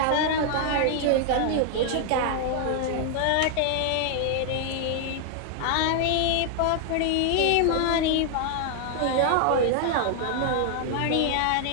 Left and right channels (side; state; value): both; different; correlation 0.00